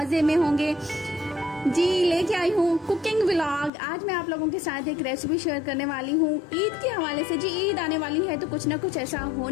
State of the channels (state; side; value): drops out; right; at 3.7 s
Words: में होंगे। जी लेके आई हूँ कुकिंग व्लॉग। आज मैं आप लोगों के साथ एक रेसिपी शेयर करने वाली हूँ ईद के हवाले से। जी ईद आने वाली है तो कुछ ना कुछ ऐसा